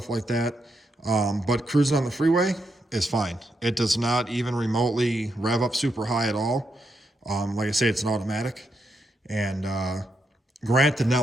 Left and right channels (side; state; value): both; normal; correlation 0.82